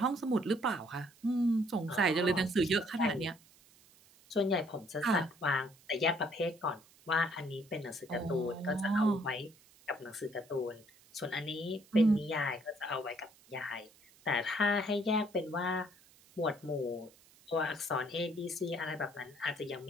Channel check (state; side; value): noise; right; hiss, 27 dB below the sound